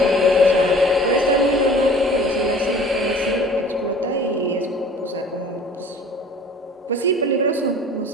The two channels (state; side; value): normal; both; correlation 0.47